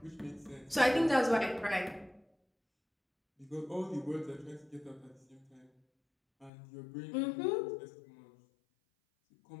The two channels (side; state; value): right; drops out; at 6.5 s